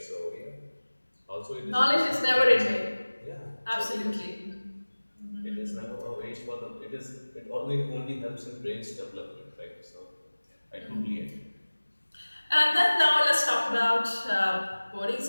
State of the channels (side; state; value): both; inverted; correlation -1.00